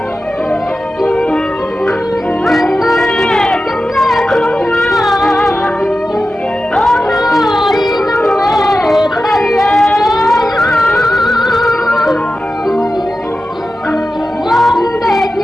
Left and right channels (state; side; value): normal; both; correlation 0.92